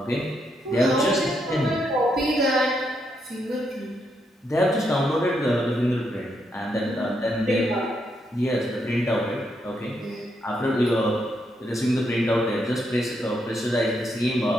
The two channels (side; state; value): both; normal; correlation 0.79